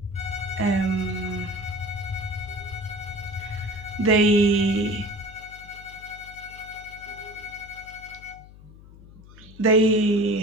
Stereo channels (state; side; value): noise; left; hum, 20 dB below the sound